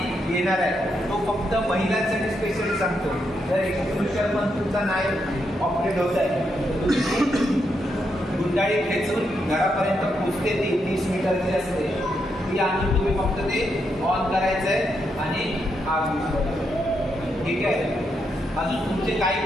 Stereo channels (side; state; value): both; normal; correlation 0.81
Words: येणार आहे. तो फक्त महिलांसाठी स्पेशली सांगतो. जर एक्सक्लुजर पण तुमचा नाही ऑपरेट होत आहे, गुंडाळी खेचून घरापर्यंत पोचते, ती 30 मीटरची असते, ती आणून तुम्ही फक्त ते ऑन करायचं आहे आणि आग विझवायची, ठीक आहे. अजून तुमचे